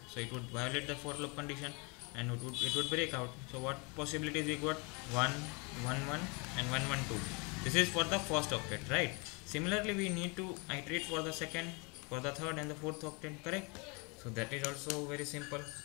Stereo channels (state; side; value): quieter; right; 30.8 dB